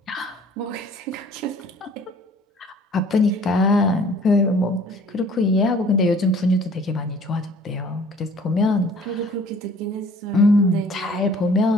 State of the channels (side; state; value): both; normal; correlation 0.52